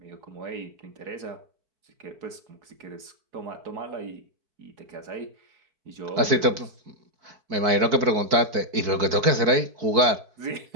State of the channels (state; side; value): late; left; 4.6 ms